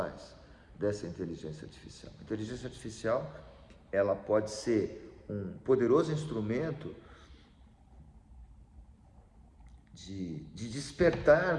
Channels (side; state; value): both; identical; correlation 1.00